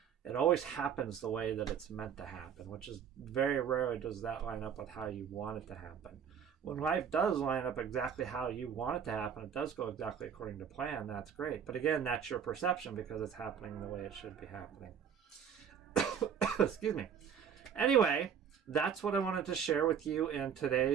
It always happens the way that it's meant to happen, which is very rarely does that line up with how you want it to happen. When life does line up exactly how you want it to happen, it does go exactly according to plan, that's great. But again, that's your perception because it's happening the way it should be happening. Excuse me. Anyway, that's what I wanted to share with you in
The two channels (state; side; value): quieter; left; 7.8 dB